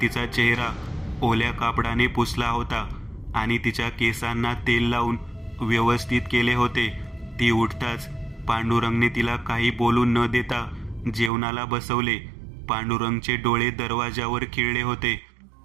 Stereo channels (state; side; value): drops out; left; at 11.3 s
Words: चेहरा ओल्या कापडाने पुसला होता आणि तिच्या केसांना तेल लावून व्यवस्थित केले होते. ती उठताच पांडुरंगने तिला काही बोलून न देता जेवणाला बसवले. पांडुरंगचे डोळे दरवाजावर खिळले होते.